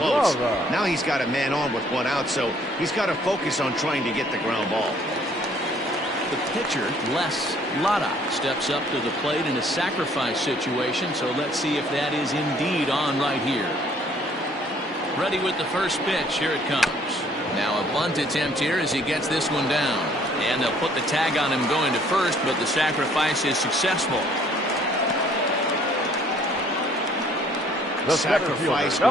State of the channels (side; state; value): both; normal; correlation 0.60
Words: Bravo. Now he's got a man on with 1 out, so he's got to focus on trying to get the ground ball. The pitcher, Les Lada, steps up to the plate in a sacrifice situation, so let's see if that is indeed on right here. Ready with the first pitch. Here it comes. Now a bunt attempt here as he gets this one down. And they'll put the tag on him going to first, but the sacrifice is successful. The center Sacrifice